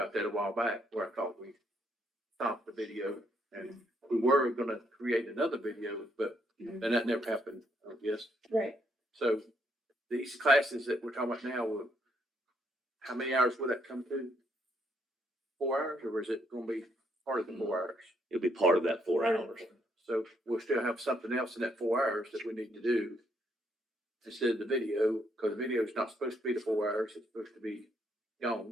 that a while back where I thought we stopped the video and we were gonna create another video, but then that never happened, I guess. Right. So these classes that we're talking about now, how many hours will that come to? 4 hours, or is it gonna be part of the 4 hours? It'll be part of that 4 hours. So we'll still have something else in that 4 hours that we need to do instead of the video, because the video is not supposed to be the 4 hours, it's supposed to be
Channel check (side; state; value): both; normal; correlation 0.73